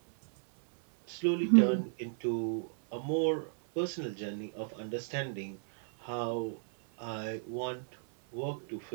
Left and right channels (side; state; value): left; silent; 55 dB below the other